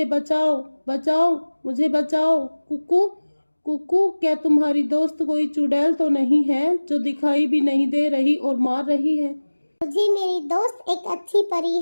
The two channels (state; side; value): inverted; both; correlation -1.00